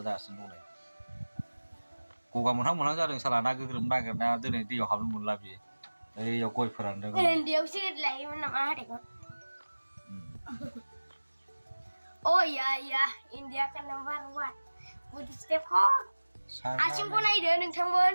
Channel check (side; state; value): both; inverted; correlation -1.00